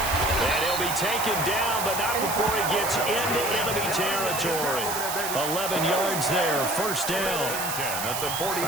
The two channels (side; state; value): right; noise; hiss, 4 dB below the sound